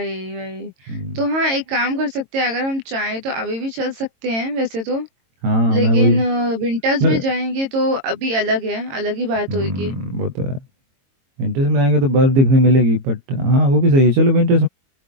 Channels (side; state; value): left; late; 22 ms